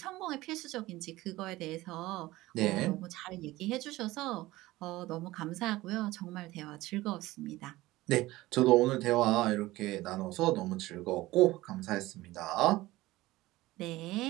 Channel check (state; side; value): quieter; left; 18.2 dB